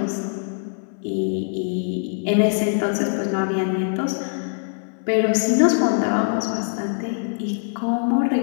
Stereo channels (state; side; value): silent; right; digital silence